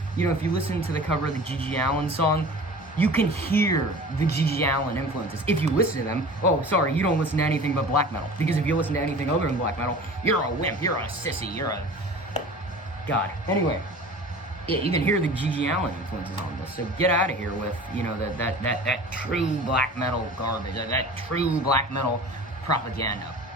you know, if you listen to the cover of the Gigi Allen song, you can hear the Gigi Allen influences. If you listen to them, oh, sorry, you don't listen to anything but black metal. Because if you listen to anything other than black metal, you're a wimp, you're a sissy, you're a... God. Anyway, yeah, you can hear the Gigi Allen influences on this. So get out of here with, you know, that true black metal garbage, that true black metal propaganda.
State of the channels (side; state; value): both; normal; correlation 0.40